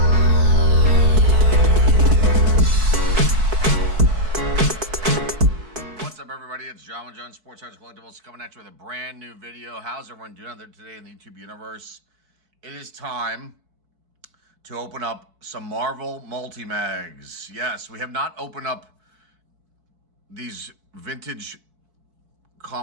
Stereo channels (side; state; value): left; late; 4.6 ms